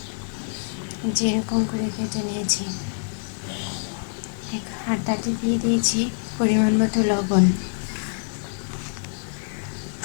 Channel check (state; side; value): silent; right; digital silence